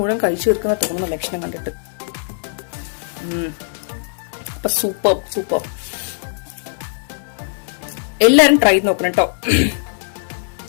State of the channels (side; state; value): right; silent; 66 dB below the other